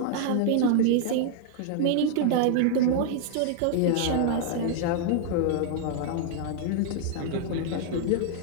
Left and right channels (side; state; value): both; different; correlation -0.01